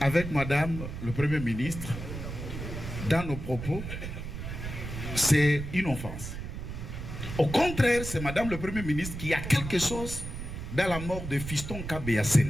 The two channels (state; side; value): noise; right; rumble, 7 dB below the sound